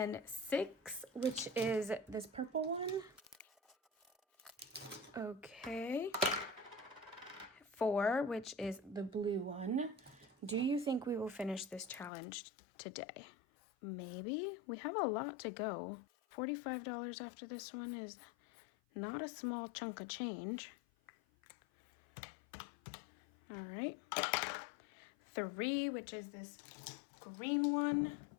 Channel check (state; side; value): drops out; right; at 12.1 s